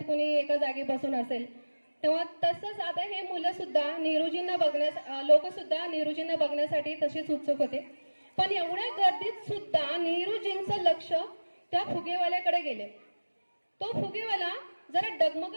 कुणी एका जागी बसून असेल। तेव्हा तसंच आता हे मुलं सुद्धा नेहरूजींना लोक सुद्धा नेहरूजींना बघण्यासाठी तसेच उत्सुक होते। पण एवढ्या गर्दीत सुद्धा नेहरूजींचं लक्ष त्या फुगेवाल्याकडे गेले। तो फुगेवाला जरा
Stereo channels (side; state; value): both; inverted; correlation -1.00